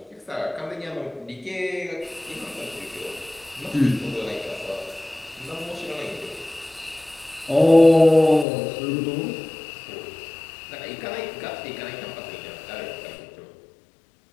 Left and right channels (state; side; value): drops out; right; at 8.5 s